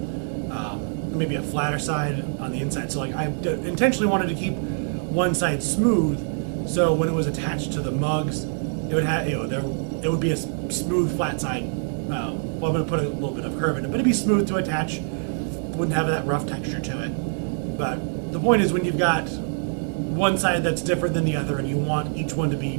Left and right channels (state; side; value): silent; left; 57 dB below the other